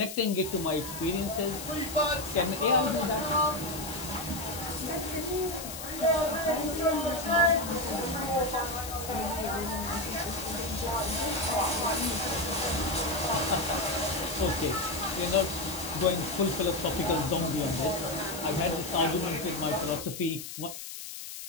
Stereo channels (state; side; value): noise; left; hiss, 9 dB below the sound